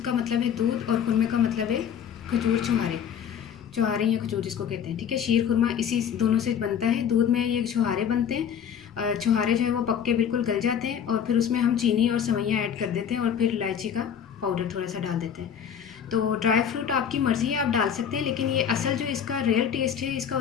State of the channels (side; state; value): right; quieter; 8.3 dB